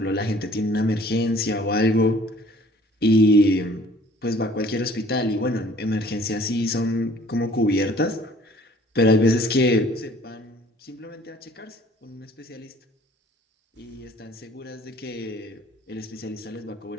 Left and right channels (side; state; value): both; normal; correlation 0.54